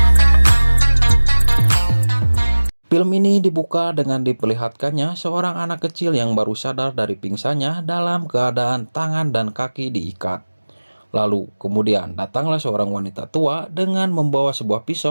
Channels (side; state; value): both; inverted; correlation -1.00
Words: Film ini dibuka dengan diperlihatkannya seorang anak kecil yang baru sadar dari pingsannya dalam keadaan tangan dan kaki diikat. Lalu kemudian datanglah seorang wanita tua dengan membawa sebuah